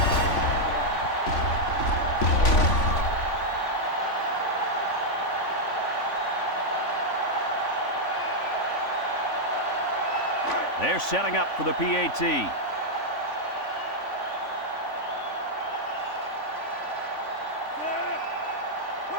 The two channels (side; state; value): right; late; 3.5 ms